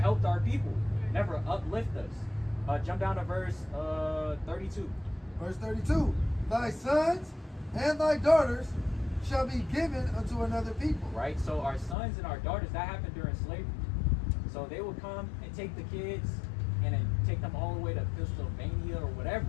our people, never uplift us. Jump down to verse 32. Verse 32. Thy sons and thy daughters shall be given unto another people. Right? So our sons and our daughters, that happened during slavery. So they would come and take the kids and then take them all the way to Pennsylvania or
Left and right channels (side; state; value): right; drops out; at 12.0 s